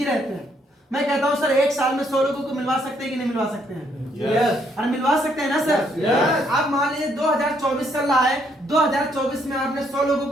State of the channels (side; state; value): both; normal; correlation 0.71